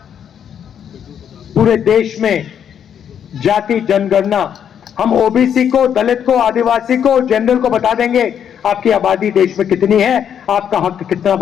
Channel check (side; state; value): right; quieter; 8.6 dB